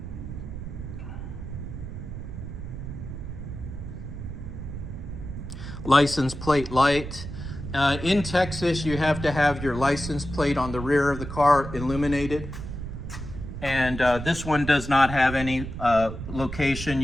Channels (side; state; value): right; noise; rumble, 8 dB below the sound